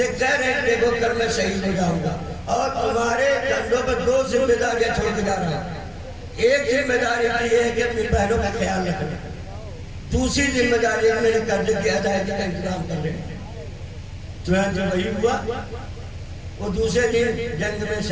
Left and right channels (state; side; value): identical; both; correlation 1.00